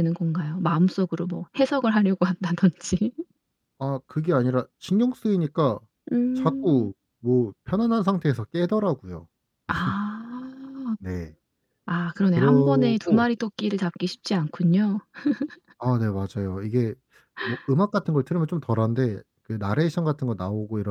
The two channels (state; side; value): identical; both; correlation 1.00